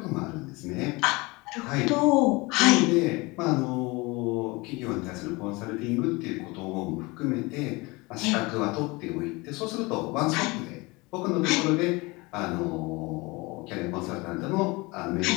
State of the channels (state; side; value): quieter; right; 24.5 dB